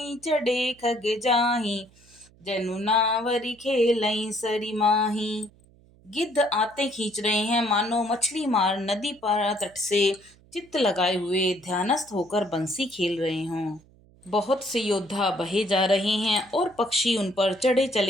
चढ़े खग जाहि जनु नावरी खेलई सरी माही। गिद्ध आते खींच रहे हैं मानो मछली मार नदी पार तट से चित्त लगाए हुए ध्यानस्थ होकर बंसी खेल रहे हों। बहुत से योद्धा बहे जा रहे हैं और पक्षी उन पर चढ़े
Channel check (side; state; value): right; noise; hum, 28 dB below the sound